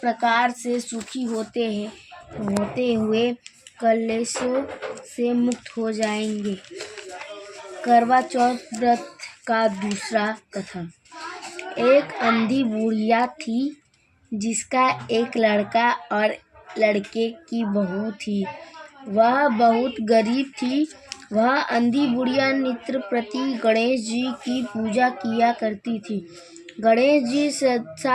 प्रकार से सुखी होते हुए कलेशों से मुक्त हो जाएंगे। करवा चौथ व्रत का दूसरा कथा। एक अंधी बुढ़िया थी जिसका एक लड़का और लड़के की बहू थी। वह बहुत गरीब थी। वह अंधी बुढ़िया नित्य प्रति गणेश जी की पूजा किया करती थी। गणेश जी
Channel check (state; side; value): identical; both; correlation 1.00